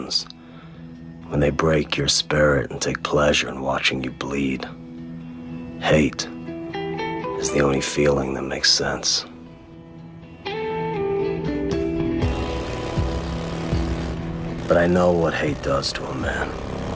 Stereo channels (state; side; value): identical; both; correlation 1.00